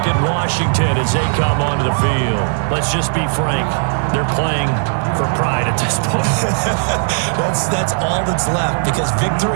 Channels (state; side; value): silent; left; digital silence